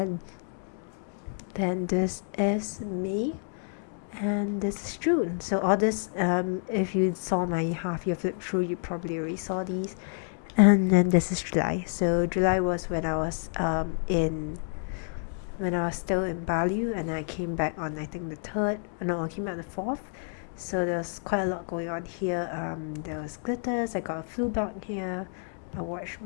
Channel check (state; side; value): silent; right; 59 dB below the other